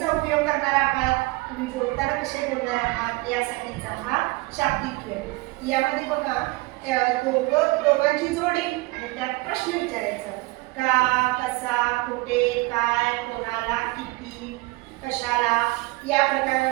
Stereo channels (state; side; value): quieter; left; 23.1 dB